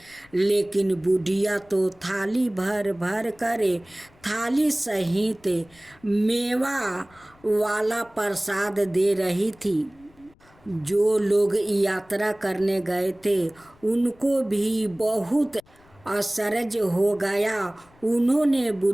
लेकिन बुढ़िया तो थाली भर भर कर थाली सहित मेवा वाला प्रसाद दे रही थी। जो लोग यात्रा करने गए थे उनको भी बहुत आश्चर्य हो गया। उन्होंने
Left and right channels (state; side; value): noise; left; rumble, 29 dB below the sound